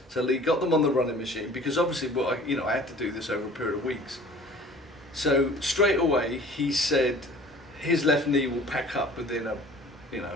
So Lee got them on the running machine, because obviously, I had to do this over a period of weeks. So straight away, he said his left knee will pack up within 3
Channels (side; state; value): both; normal; correlation 0.47